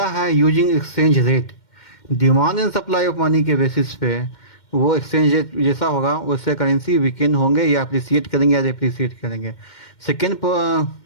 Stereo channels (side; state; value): right; late; 2.1 ms